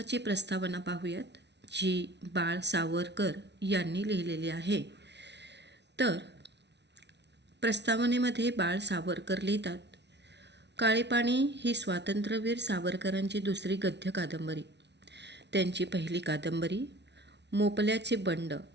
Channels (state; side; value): late; left; 0.50 ms